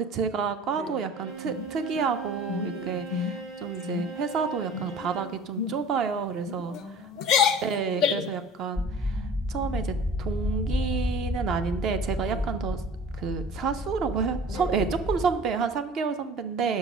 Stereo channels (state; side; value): normal; both; correlation 0.42